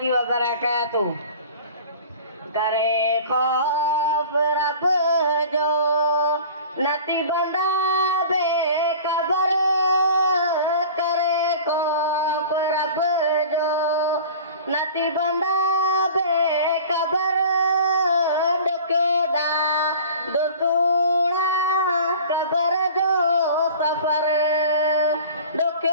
wabarakatuh. Kare khof rab jo nati banda be kabar, kare khof rab jo nati banda be kabar, dokyoda dosuna kabar jo safar,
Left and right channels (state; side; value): inverted; both; correlation -0.41